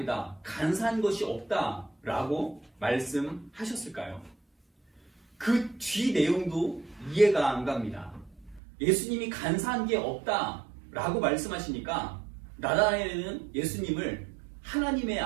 간사한 것이 없다 라고 말씀하셨을까요? 그 뒤 내용도 이해가 안 갑니다. 예수님이 간사한 게 없다 라고 말씀하시니까 나다나엘은 예수님을 하나님의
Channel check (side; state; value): left; drops out; at 8.6 s